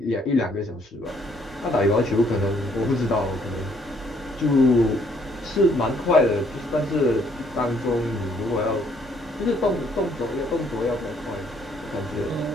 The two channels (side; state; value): both; normal; correlation 0.66